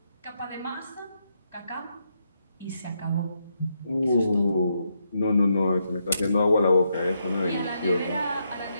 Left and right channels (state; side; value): inverted; both; correlation -0.80